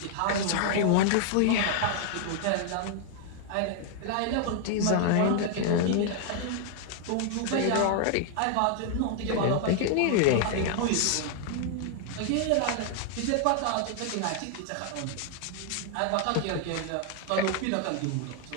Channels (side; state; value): both; different; correlation 0.00